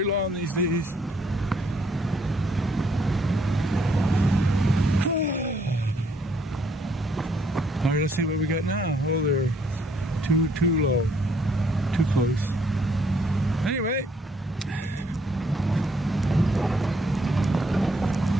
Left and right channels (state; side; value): normal; both; correlation 0.68